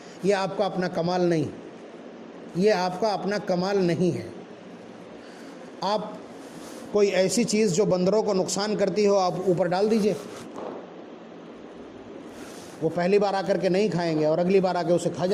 یہ آپ کا اپنا کمال نہیں، یہ آپ کا اپنا کمال نہیں ہے۔ آپ کوئی ایسی چیز جو بندروں کو نقصان کرتی ہو آپ اوپر ڈال دیجئے، وہ پہلی بار آ کر کے نہیں کھائیں گے اور اگلی بار آ کے اسے کھا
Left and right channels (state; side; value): identical; both; correlation 1.00